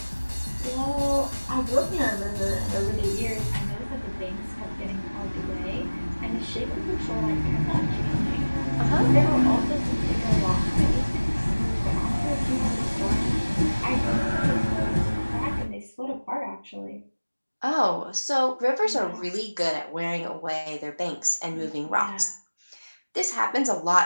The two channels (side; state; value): both; inverted; correlation -1.00